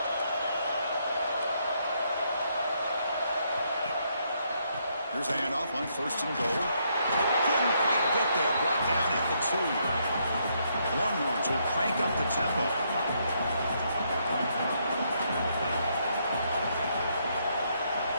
Here's a handoff on 1st and goal. Couldn't quite get there. Brought down at the 2. Longhorns will crank up the tempo.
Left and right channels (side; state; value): both; inverted; correlation -0.74